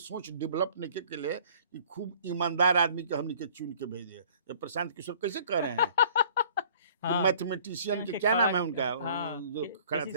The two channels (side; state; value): both; inverted; correlation -0.53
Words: डेवलप निके के लिए कि खूब ईमानदार आदमी के हमने के चुन के भेजे। जब प्रशांत किशोर कैसे कह रहे हैं कि हाँ मैथमेटिशियन के के क्या नाम है खड़ा। उनका, हाँ जो खड़ा केसी